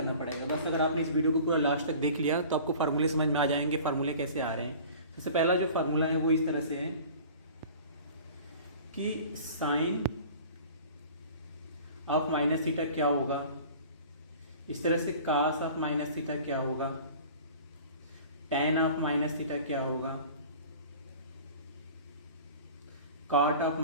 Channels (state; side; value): inverted; both; correlation -0.43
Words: पड़ेगा, बस अगर आपने इस वीडियो को पूरा लास्ट तक देख लिया तो आपको फार्मूले समझ में आ जाएंगे, फार्मूले कैसे आ रहे हैं। सबसे पहला जो फार्मूला है वो इस तरह से है कि साइन ऑफ माइनस थीटा क्या होगा, इस तरह से कास ऑफ माइनस थीटा क्या होगा, टैन ऑफ माइनस थीटा क्या होगा, कॉट ऑफ